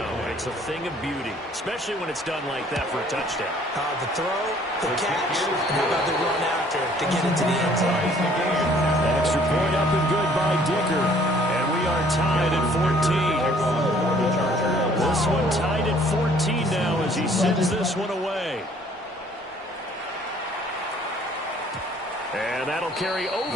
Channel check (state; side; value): normal; both; correlation 0.58